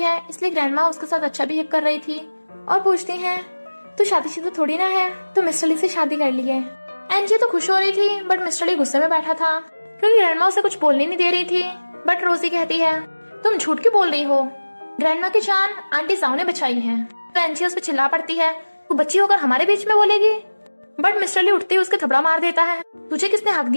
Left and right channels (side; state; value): both; inverted; correlation -1.00